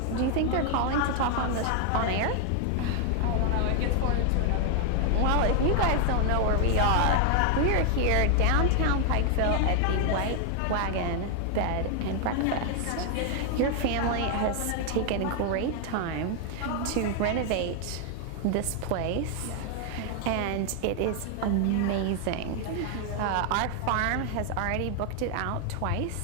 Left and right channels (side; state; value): both; different; correlation 0.00